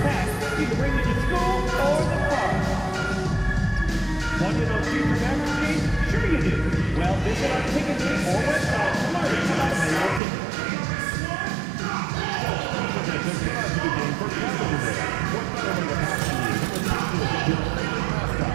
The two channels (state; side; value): drops out; left; at 10.2 s